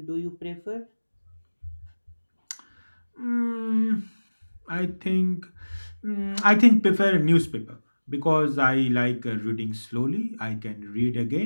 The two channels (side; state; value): both; inverted; correlation -1.00